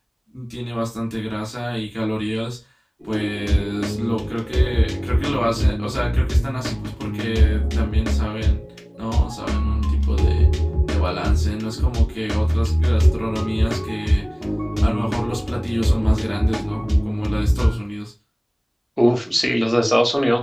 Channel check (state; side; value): identical; both; correlation 1.00